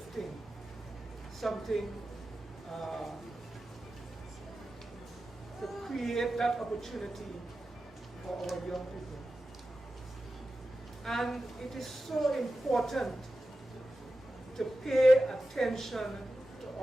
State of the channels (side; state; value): both; normal; correlation 0.93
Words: something to create that opportunity for our young people. And it is so important to pay attention to